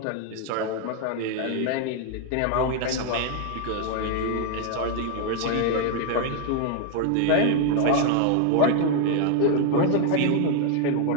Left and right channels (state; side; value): different; both; correlation 0.00